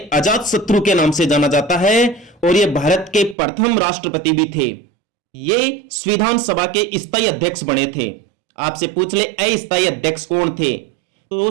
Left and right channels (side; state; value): left; drops out; at 3.4 s